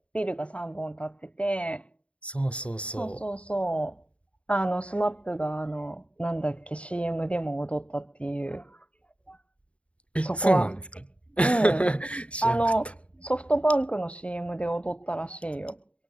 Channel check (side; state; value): right; late; 0.062 ms